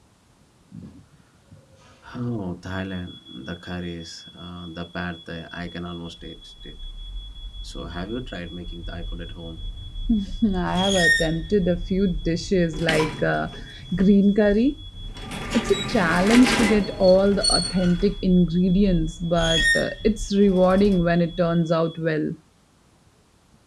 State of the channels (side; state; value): both; identical; correlation 1.00